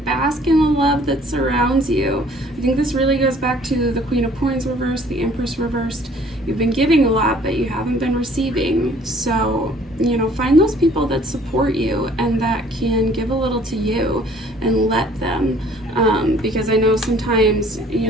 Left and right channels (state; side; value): normal; both; correlation 0.56